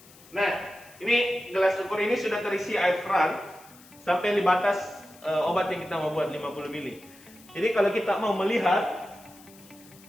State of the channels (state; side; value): noise; left; hiss, 24 dB below the sound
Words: Nah, ini gelas ukur ini sudah terisi air keran sampai di batas obat yang kita mau buat 50 ml. Jadi kalau kita mau melihat